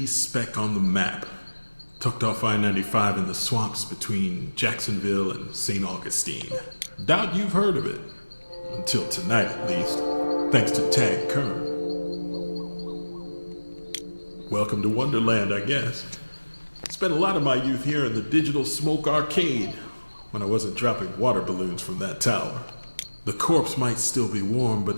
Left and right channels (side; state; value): both; inverted; correlation -1.00